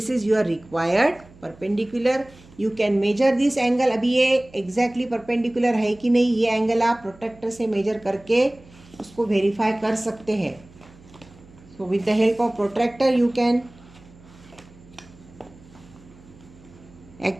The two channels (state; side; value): noise; right; hum, 24 dB below the sound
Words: is your required perpendicular. You can measure this angle. अभी ये एग्जैक्टली परपेंडिकुलर है कि नहीं, ये एंगल आप प्रोट्रैक्टर से major करके उसको वेरीफाई कर सकते हैं. So with the help of protractor you can